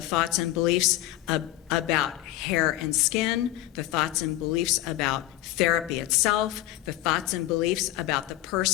and beliefs about hair and skin, the thoughts and beliefs about therapy itself, the thoughts and beliefs about the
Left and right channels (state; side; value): quieter; right; 15.4 dB